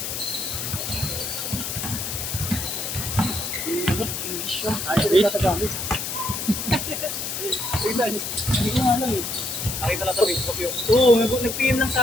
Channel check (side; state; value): left; noise; hiss, 4 dB below the sound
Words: English yun. Ayaw ko natagamit. Hindi ko nga lang eh. Nakita lang sa Facebook yung... Oo, nag-PM lang